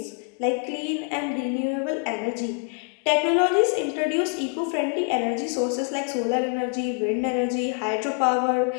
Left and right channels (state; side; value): quieter; right; 37.7 dB